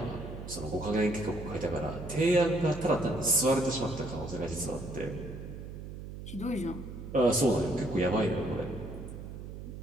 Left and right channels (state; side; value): noise; right; hum, 10 dB below the sound